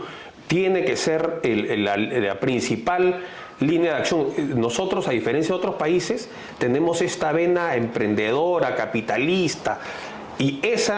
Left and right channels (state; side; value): identical; both; correlation 1.00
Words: tiene que ser la principal línea de acción. Nosotros, a diferencia de otros países, tenemos esta vena emprendedora, capitalista, y